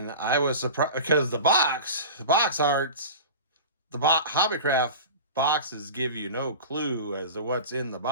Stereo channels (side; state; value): both; inverted; correlation -0.33